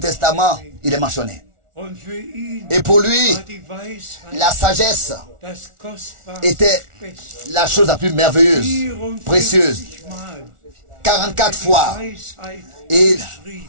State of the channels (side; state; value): left; late; 1.4 ms